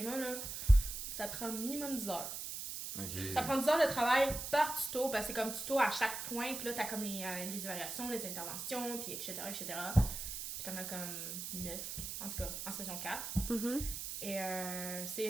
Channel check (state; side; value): noise; right; hiss, 6 dB below the sound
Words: là, ça prend minimum 10 heures. Ok. Ça prend 10 heures de travail par tuto, parce que c'est comme tuto à chaque point, puis là, t'as comme les évaluations, les interventions, puis etc., etc. Puis t'en as comme 9, en tout cas, en saison 4. Mhm. Et c'est